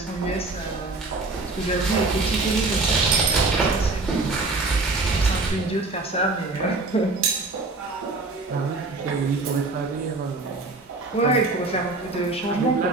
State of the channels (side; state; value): left; quieter; 3.4 dB